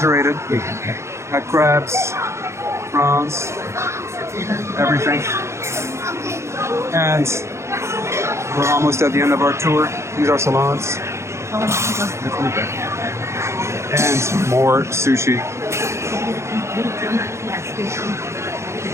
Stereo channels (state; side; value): late; left; 0.13 ms